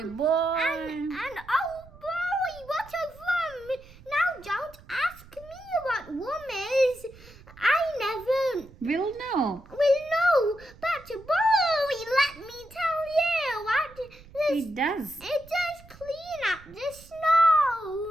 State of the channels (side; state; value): right; noise; rumble, 22 dB below the sound